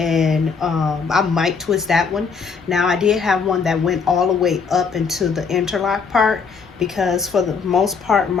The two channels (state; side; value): quieter; right; 5.5 dB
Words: I might twist that one. Now, I did have one that went all the way up into the interlock part, because for the most part